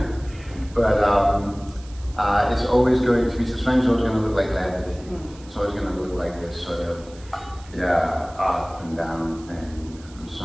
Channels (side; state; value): right; noise; hiss, 23 dB below the sound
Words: but it's always going to be, suspension is always going to look like levity. It's always going to look like this sort of, up and down thing, and so